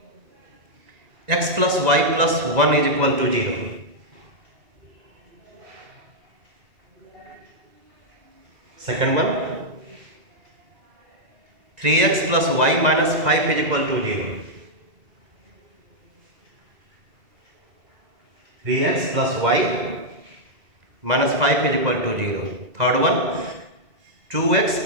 X plus y plus 1 is equal to 0. Second one, 3x plus y minus 5 is equal to 0. 3x plus y minus 5 is equal to 0. Third one, 2x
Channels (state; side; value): late; left; 1.9 ms